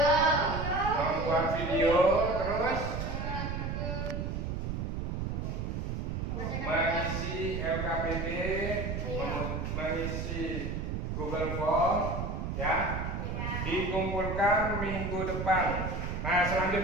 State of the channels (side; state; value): right; noise; rumble, 3 dB below the sound